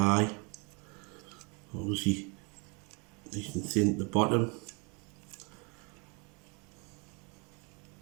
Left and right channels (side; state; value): left; quieter; 32.1 dB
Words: obviously nice and thin at the bottom.